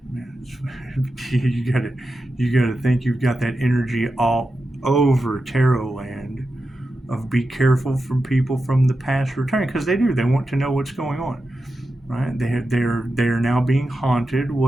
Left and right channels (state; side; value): normal; both; correlation 0.90